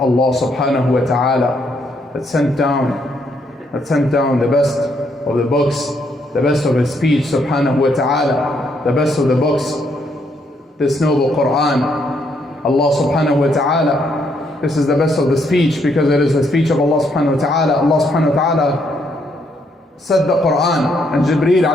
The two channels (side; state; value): both; normal; correlation 0.73